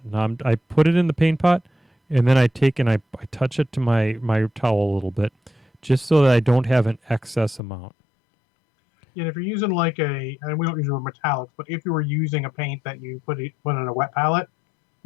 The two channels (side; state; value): right; drops out; at 7.6 s